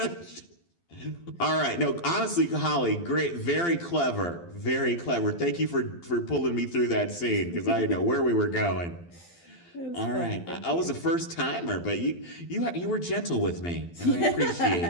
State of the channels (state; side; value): late; right; 12 ms